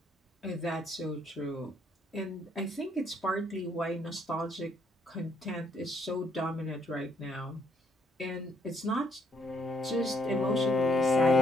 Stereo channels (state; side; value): normal; both; correlation 0.69